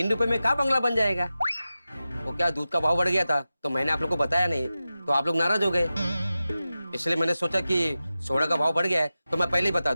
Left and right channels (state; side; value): inverted; both; correlation -0.94